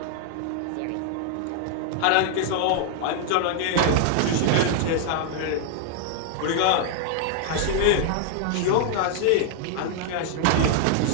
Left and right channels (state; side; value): different; both; correlation -0.01